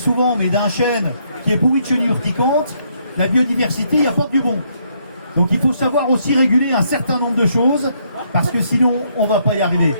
mais d'un chêne qui est pourri de chenilles urticantes, la biodiversité y apporte du bon. Donc il faut savoir aussi réguler un certain nombre de choses, parce que sinon on ne va pas y arriver.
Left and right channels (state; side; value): inverted; both; correlation -0.72